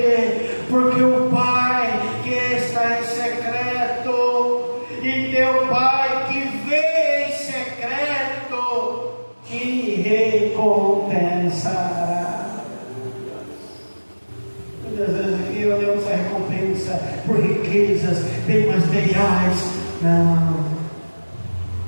Porque o Pai que está em secreto e teu Pai que vê em secreto te recompensará. Muitas vezes aqui olhamos a recompensa por riquezas, bem materiais. Não,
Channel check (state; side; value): inverted; both; correlation -1.00